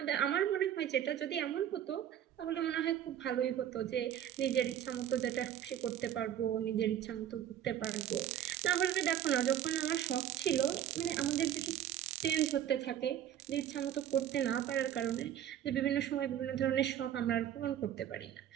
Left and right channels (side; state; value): left; quieter; 10.7 dB